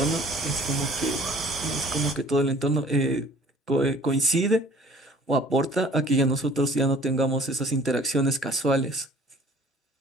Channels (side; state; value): both; normal; correlation 0.52